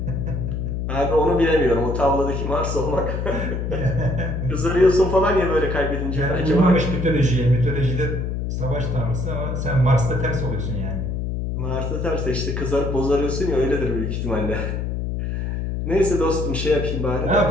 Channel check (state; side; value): noise; left; hum, 2 dB below the sound